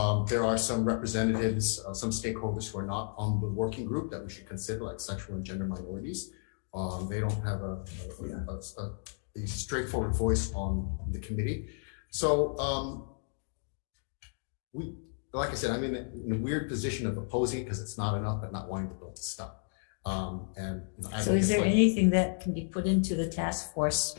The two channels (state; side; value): silent; right; digital silence